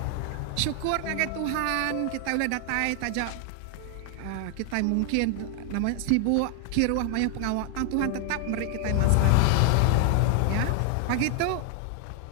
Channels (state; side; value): different; both; correlation 0.00